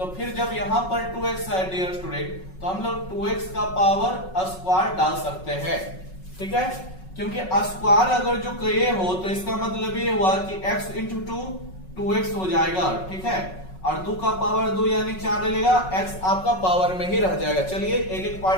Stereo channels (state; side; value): late; right; 5.4 ms